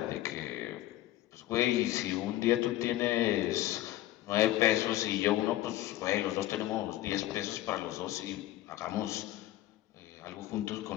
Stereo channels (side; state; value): right; quieter; 14.9 dB